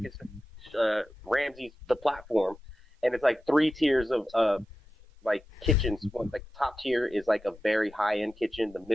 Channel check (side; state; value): both; normal; correlation 0.93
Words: it's Ramsey's The Platform, and it's like 3 tiers of like kitchens. One like top tier is like a very high end kitchen. The